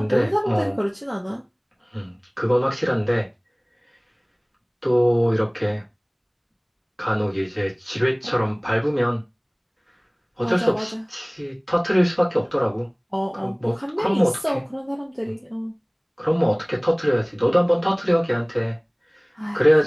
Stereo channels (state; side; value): identical; both; correlation 1.00